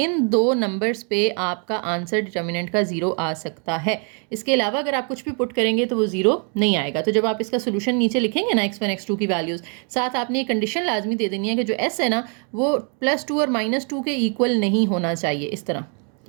दो नंबर्स पे आपका आंसर डिटर्मिनेंट का 0 आ सकता है। इसके अलावा अगर आप कुछ भी पुट करेंगे तो वो 0 नहीं आएगा। तो जब आप इसका सोल्यूशन नीचे लिखेंगे ना x1 x2 की वैल्यूज़, साथ आपने एक कंडीशन लाजमी दे देनी है कि जो s है ना वो +2 और -2 के इक्वल नहीं होना चाहिए। इस तरह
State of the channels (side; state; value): left; quieter; 39.7 dB